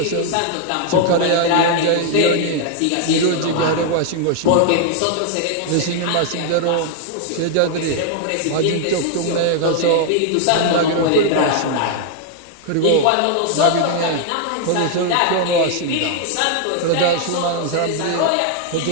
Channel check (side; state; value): both; different; correlation 0.00